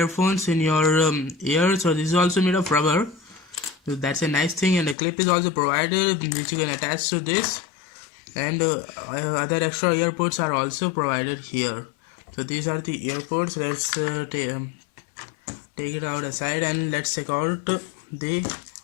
in your ear. So this is also made of rubber, so that's a nice thing. And a clip is also provided which you can attach to this, and other extra earpods are also provided here. So these are the earpods. Let's take it out aside and let's check out the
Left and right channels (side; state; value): right; drops out; at 5.0 s